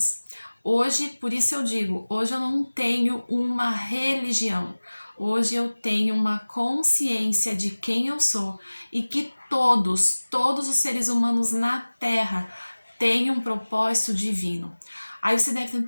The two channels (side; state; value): both; inverted; correlation -1.00